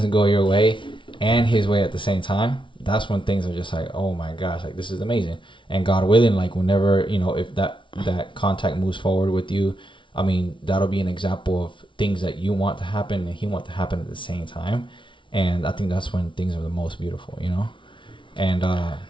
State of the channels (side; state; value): right; late; 0.24 ms